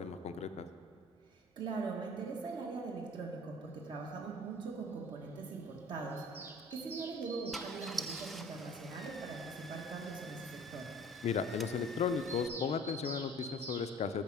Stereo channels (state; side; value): normal; both; correlation 0.47